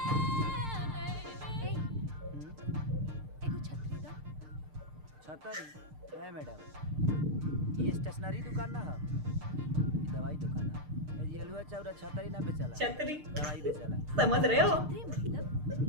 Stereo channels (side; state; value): left; late; 6.6 ms